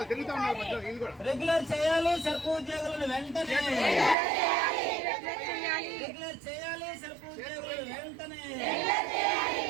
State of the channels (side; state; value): left; drops out; at 4.2 s